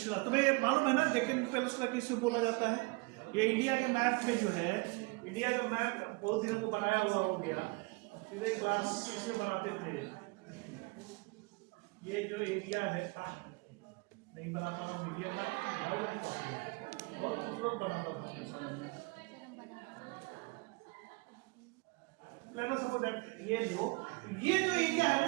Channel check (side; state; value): left; quieter; 27.3 dB